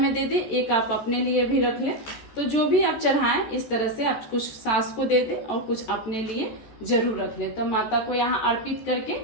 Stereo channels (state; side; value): late; right; 14 ms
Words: दे दे, एक आप अपने लिए भी रख लें। तो जो भी आप चढ़ाएं इस तरह से आप कुछ सास को दे दे और कुछ अपने लिए जरूर रख लें। तो माता को यहाँ अर्पित करके